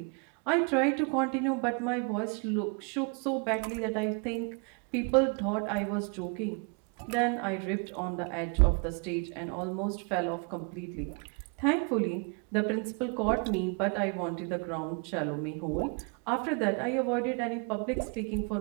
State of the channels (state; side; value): quieter; left; 36.0 dB